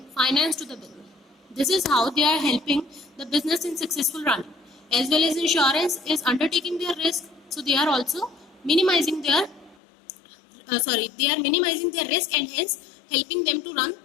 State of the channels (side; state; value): right; drops out; at 9.8 s